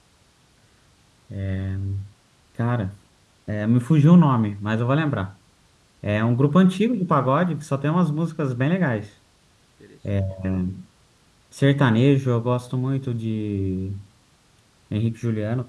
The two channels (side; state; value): both; identical; correlation 1.00